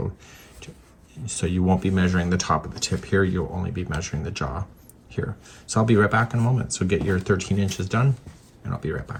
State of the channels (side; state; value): both; identical; correlation 1.00